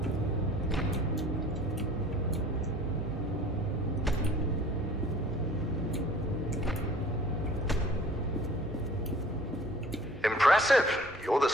Impressive. You're the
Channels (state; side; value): normal; both; correlation 0.49